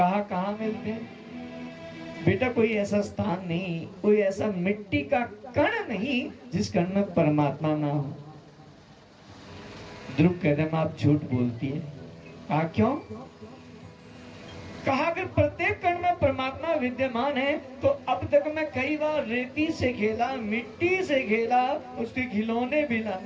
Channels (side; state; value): both; identical; correlation 1.00